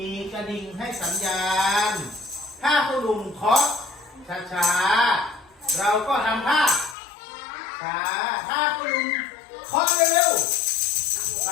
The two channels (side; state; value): right; drops out; at 7.0 s